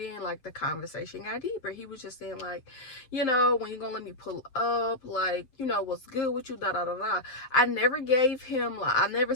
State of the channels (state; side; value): late; right; 7.8 ms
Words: like the conversation got deeper. He was just saying like, when you gonna let me pull up, like, what's good with you, da da da da. I never gave him, like, I never